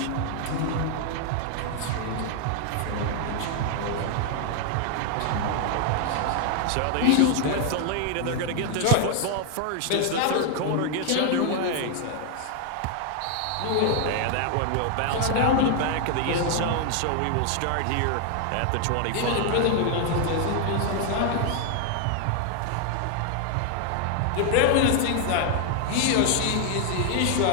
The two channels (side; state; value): both; different; correlation 0.00